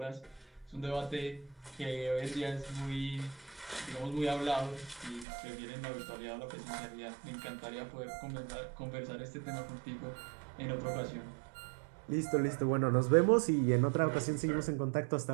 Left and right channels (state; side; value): drops out; left; at 5.2 s